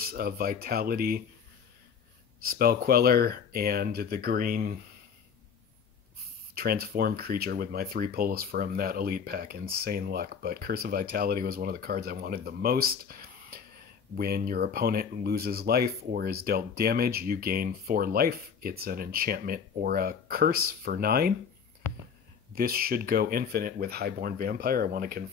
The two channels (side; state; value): right; quieter; 6.8 dB